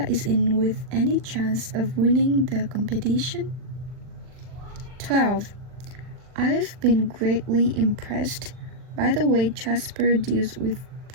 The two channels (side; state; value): left; late; 39 ms